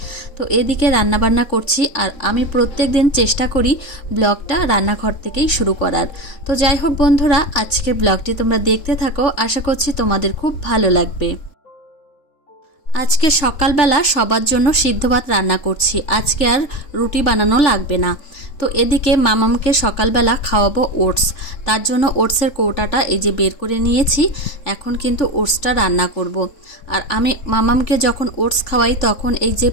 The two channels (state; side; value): late; right; 3.7 ms